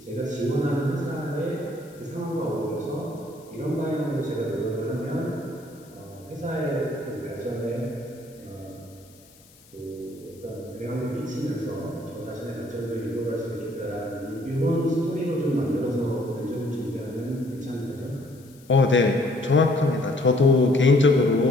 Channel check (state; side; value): noise; left; hiss, 27 dB below the sound